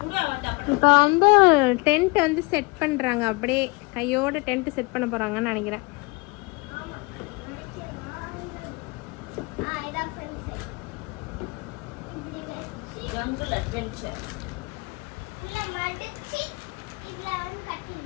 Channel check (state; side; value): quieter; right; 27.4 dB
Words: வேண்டாம். இப்போ வந்து டென்ட் வந்து செட் பண்ணுறாங்க, அப்படியே கையோட டென்ட் செட் பண்ண போகிறாங்கன்னு நினைக்கிறேன். இதான் ஃப்ரெண்ட்ஸ். இப்படி வச்சு ஜங்கிள் அட்வென்ச்சர். உள்ள மடிச்சு இதுல வந்து